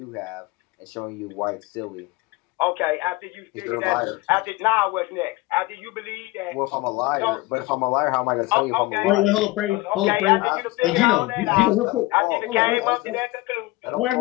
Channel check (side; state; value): right; quieter; 20.5 dB